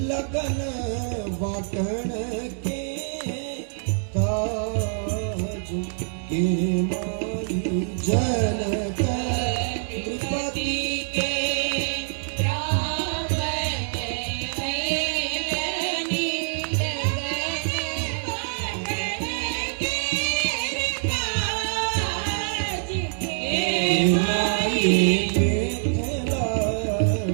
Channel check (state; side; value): silent; left; digital silence